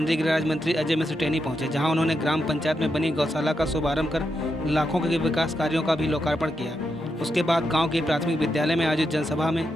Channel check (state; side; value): normal; both; correlation 0.84